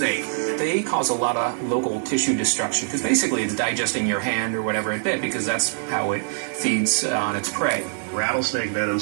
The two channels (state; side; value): silent; left; digital silence